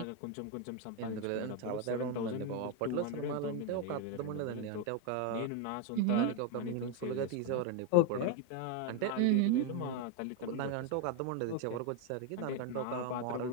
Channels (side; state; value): both; different; correlation 0.02